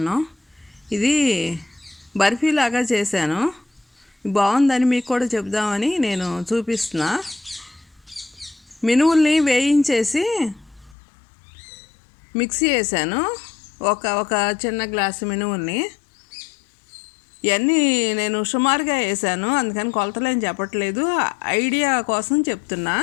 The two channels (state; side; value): drops out; right; at 11.0 s